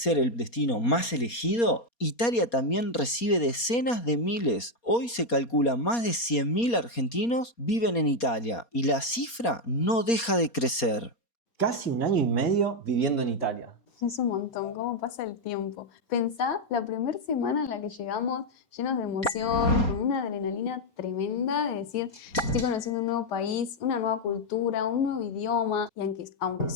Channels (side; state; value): right; late; 4.3 ms